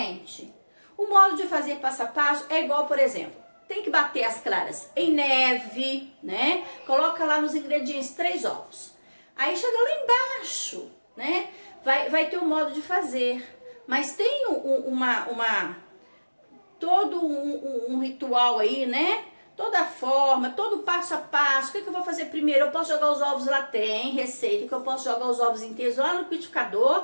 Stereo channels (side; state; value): both; inverted; correlation -1.00